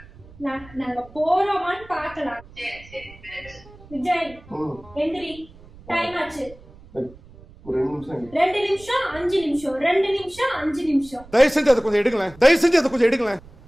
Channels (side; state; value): right; noise; rumble, 22 dB below the sound